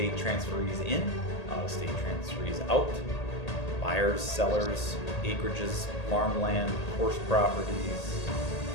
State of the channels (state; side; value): late; right; 1.8 ms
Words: transferees in, out-of-state transferees out, buyers, sellers, acreages, farmland, horse properties,